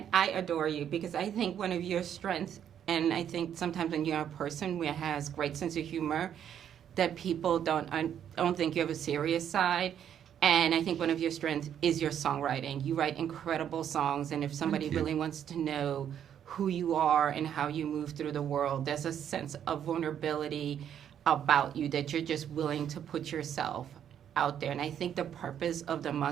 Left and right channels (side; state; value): left; quieter; 9.4 dB